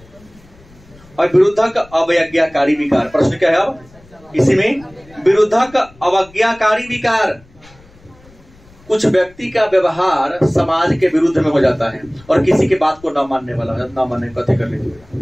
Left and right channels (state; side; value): noise; left; rumble, 26 dB below the sound